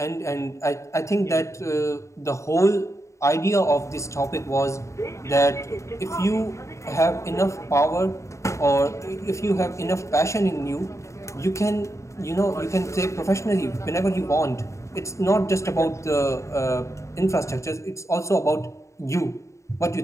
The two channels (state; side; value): late; right; 0.14 ms